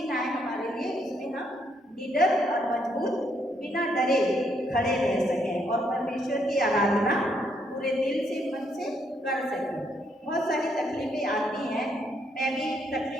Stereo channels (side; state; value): both; normal; correlation 0.73